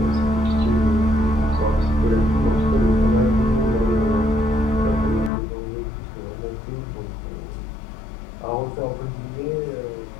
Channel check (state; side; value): drops out; right; at 5.3 s